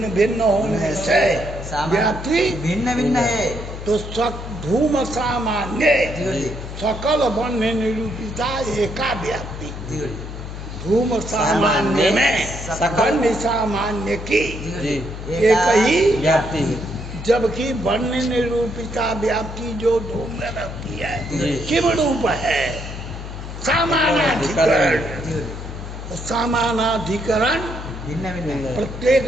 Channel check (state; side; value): noise; left; hum, 9 dB below the sound